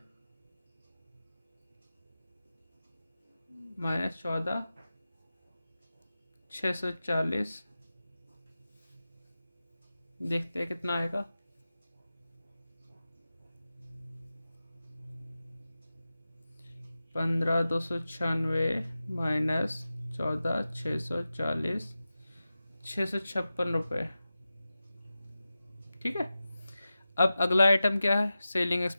माइनस 14,640, देखते हैं कितना आएगा। 15,296 माइनस 14,640, 656 रुपये, ठीक है। अब अगला आइटम क्या है, सेलिंग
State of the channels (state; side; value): inverted; both; correlation -0.95